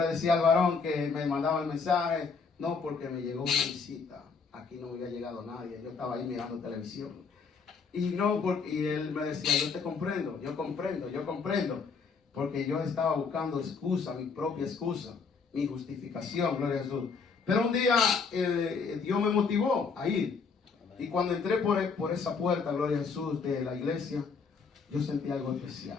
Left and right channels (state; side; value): quieter; right; 5.2 dB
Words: decía al varón que me mandaba el mensaje, no, porque me llegó una visita, aquí no me había llegado nadie, yo estaba ahí mirando televisión. Y él me decía, yo te comprendo, yo comprendo, porque yo estaba buscando excusa, mi propia excusa, mi justificación, gloria a Jesús. Pero un día Dios me motivó a ir. Y cuando entré por esa puerta, gloria a Jesús, de la iglesia, yo sentí algo especial.